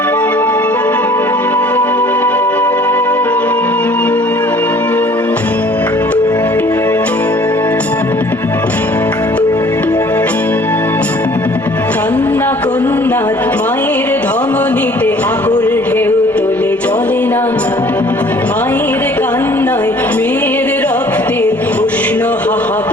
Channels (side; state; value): both; normal; correlation 0.53